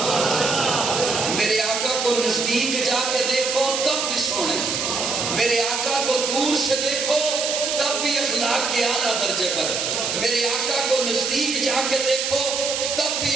میرے آقا کو نزدیک جا کے دیکھو تب بھی سونے، میرے آقا کو دور سے دیکھو تب بھی اخلاق کے اعلیٰ درجے پر، میرے آقا کو نزدیک جا کے دیکھو تب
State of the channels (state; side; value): noise; right; hiss, 1 dB below the sound